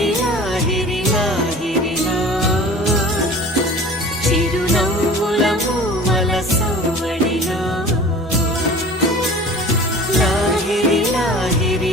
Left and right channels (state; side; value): normal; both; correlation 0.41